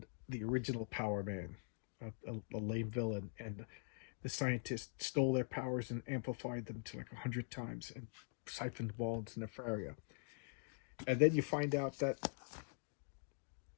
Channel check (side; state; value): right; silent; digital silence